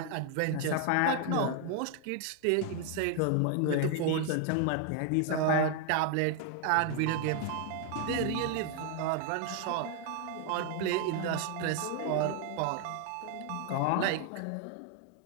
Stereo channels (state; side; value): different; both; correlation 0.01